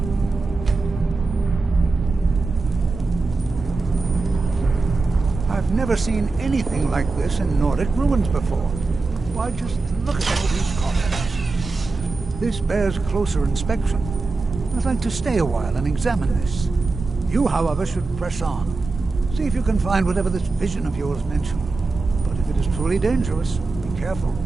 I've never seen anything like this in Nordic ruins before. Why, just look at all these columns. This bears closer inspection. I'd like to stay a while and examine this. You, however, should press on. See if you can find whatever this vision of yours mentioned. But if it is truly dangerous, be careful.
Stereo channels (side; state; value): left; quieter; 3.7 dB